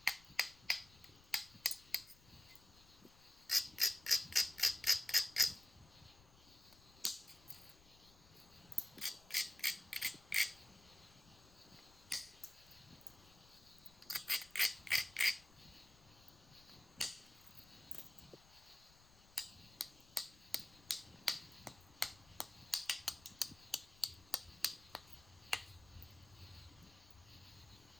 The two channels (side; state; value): left; noise; rumble, 24 dB below the sound